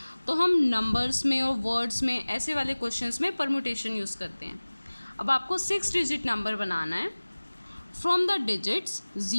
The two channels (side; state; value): both; inverted; correlation -1.00